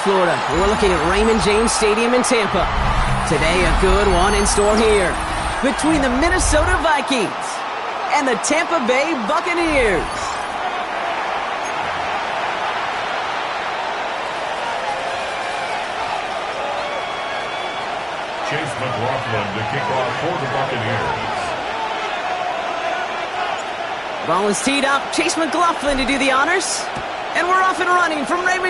we're looking at Raymond James Stadium in Tampa. Today, a good one in store here between the Minnesota Vikings and the Tampa Bay Buccaneers. Chase McLaughlin to kick off for the Buccaneers. Ball is teed up. Chase McLaughlin to do the honors. And we're off and running from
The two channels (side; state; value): both; identical; correlation 1.00